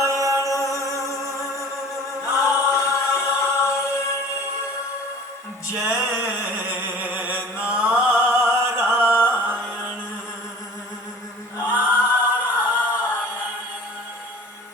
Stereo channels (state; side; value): normal; both; correlation 0.45